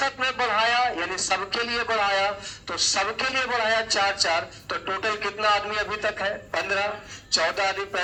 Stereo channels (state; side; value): identical; both; correlation 1.00